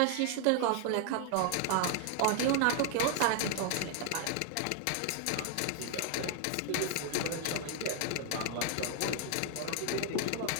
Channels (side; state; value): both; different; correlation 0.00